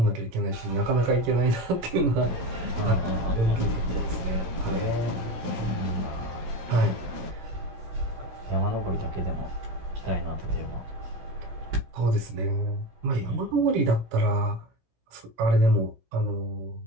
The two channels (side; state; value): left; late; 17 ms